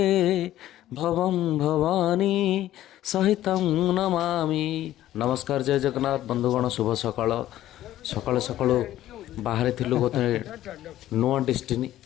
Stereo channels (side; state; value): right; quieter; 13.6 dB